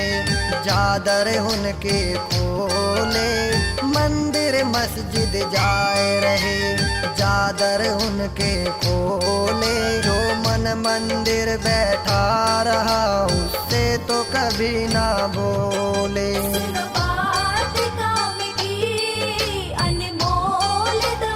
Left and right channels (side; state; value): both; identical; correlation 1.00